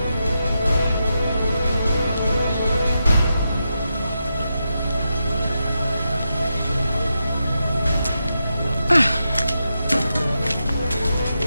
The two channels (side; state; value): both; inverted; correlation -0.87